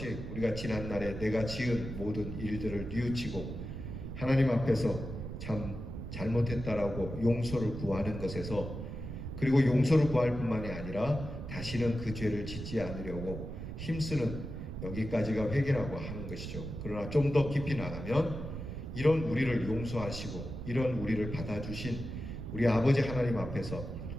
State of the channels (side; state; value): right; noise; rumble, 7 dB below the sound